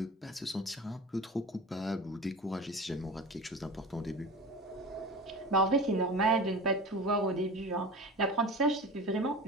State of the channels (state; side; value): normal; both; correlation 0.34